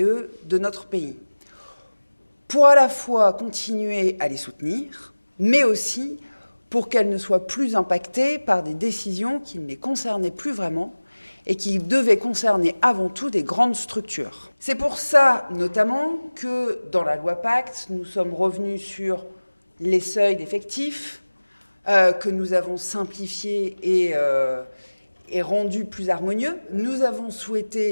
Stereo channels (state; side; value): inverted; both; correlation -1.00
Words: de notre pays, pour à la fois continuer à les soutenir, mais aussi pour qu'elles ne soient plus impactées par des décisions qui ne les concernaient plus vraiment et qui devaient concerner avant tout des grandes structures. C'est pour ça, notamment, que dans la loi Pacte, nous sommes revenus sur les seuils d'effectifs, que nous avons simplifiés et rendus plus harmonieux. Nous avons